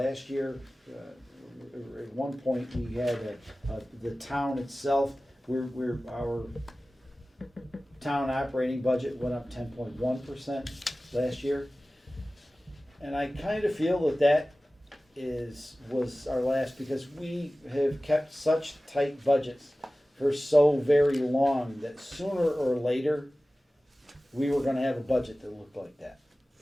year, at one point, we had the town itself, our town operating budget went up 10.1% last year. And I kind of feel that was our last, because we have kept such tight budgets for so very long that sooner or later, we were gonna have a budget that looked like that.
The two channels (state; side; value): normal; both; correlation 0.97